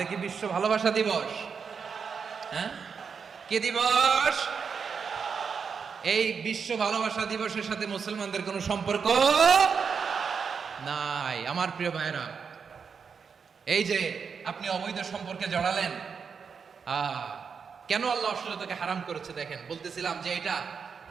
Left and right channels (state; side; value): quieter; left; 6.0 dB